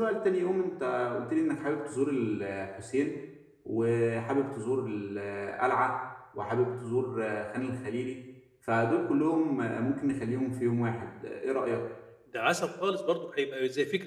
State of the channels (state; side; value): identical; both; correlation 1.00